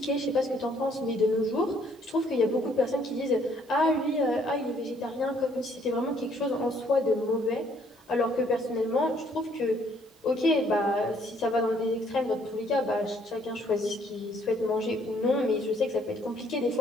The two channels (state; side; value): normal; both; correlation 0.65